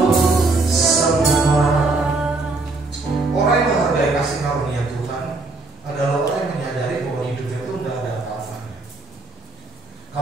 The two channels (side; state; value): left; quieter; 3.4 dB